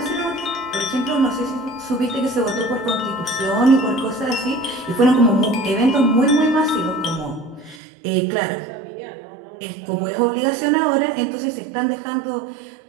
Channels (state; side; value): drops out; left; at 7.8 s